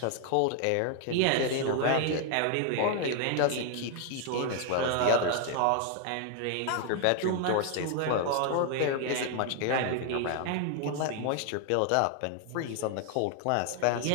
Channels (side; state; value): both; different; correlation 0.00